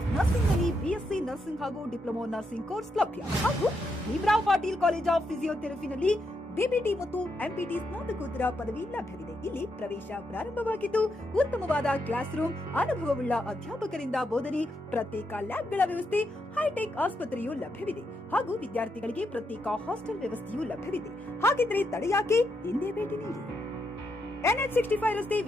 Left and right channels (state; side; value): normal; both; correlation 0.81